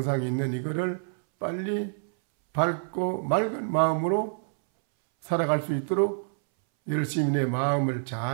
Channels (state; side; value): silent; left; 60 dB below the other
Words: 있는 이거를 빨리 밝고 맑은 마음으로 살아갈 수 있도록 열심히 내 마음을